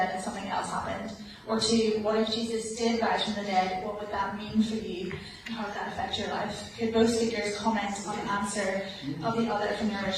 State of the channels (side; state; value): both; identical; correlation 1.00